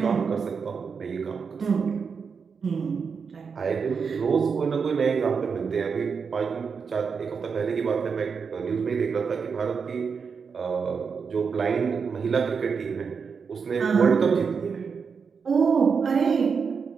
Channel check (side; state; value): left; quieter; 5.8 dB